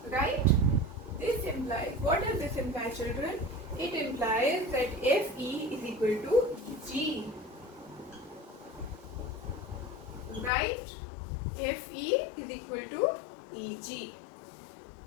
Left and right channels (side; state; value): right; drops out; at 10.5 s